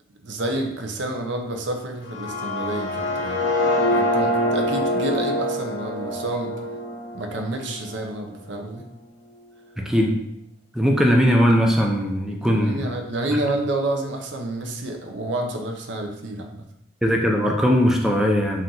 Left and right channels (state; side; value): normal; both; correlation 0.56